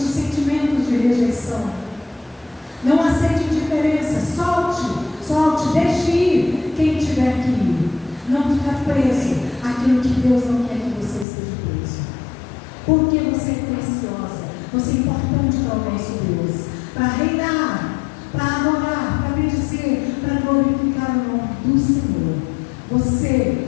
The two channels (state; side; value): drops out; right; at 11.2 s